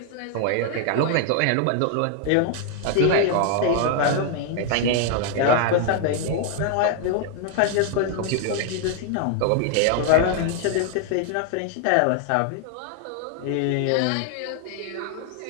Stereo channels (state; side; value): different; both; correlation 0.00